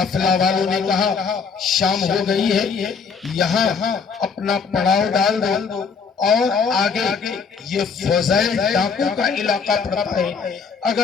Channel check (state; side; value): quieter; right; 5.7 dB